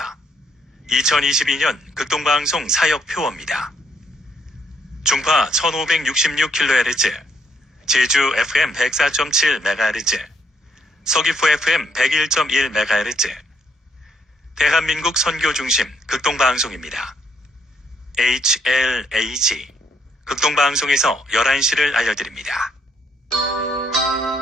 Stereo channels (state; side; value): normal; both; correlation 0.72